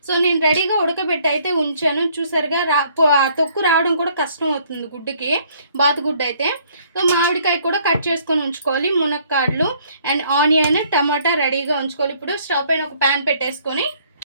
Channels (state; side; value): inverted; both; correlation -0.63